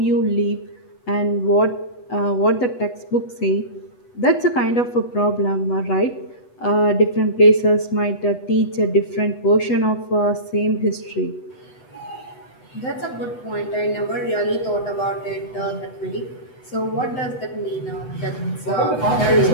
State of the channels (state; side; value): late; right; 8.1 ms